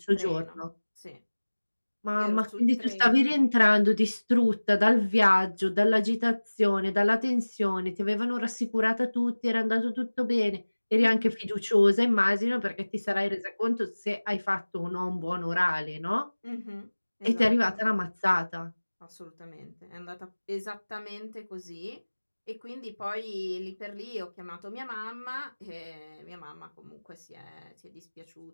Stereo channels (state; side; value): inverted; both; correlation -1.00